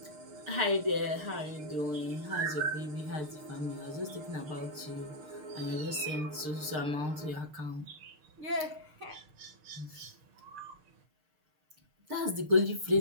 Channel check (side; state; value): left; late; 6.6 ms